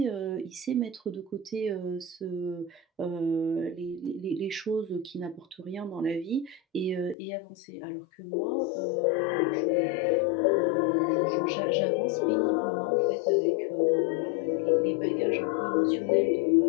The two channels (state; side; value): drops out; right; at 7.2 s